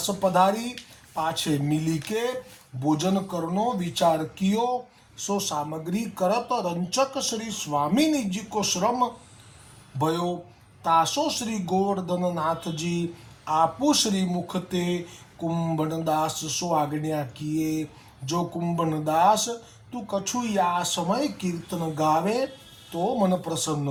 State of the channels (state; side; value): identical; both; correlation 1.00